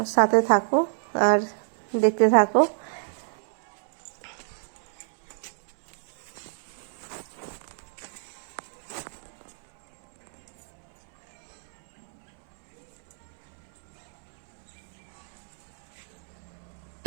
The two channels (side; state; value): left; silent; 60 dB below the other